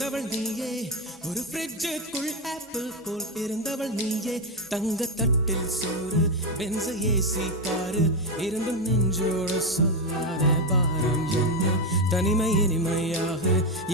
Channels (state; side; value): normal; both; correlation 0.08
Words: நீயே ஒரு ஃப்ரிட்ஜுக்குள் ஆப்பிள் போல் இருந்தவள் நீயே தங்க தட்டில் சோறு பென்ச ஏசி காரு இருந்தும் நெஞ்சோடு சொல்லாத பாரம் என்ன தனிமை இனிமையாக